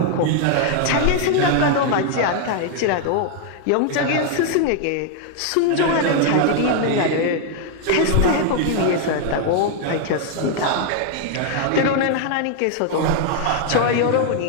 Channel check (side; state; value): both; different; correlation 0.00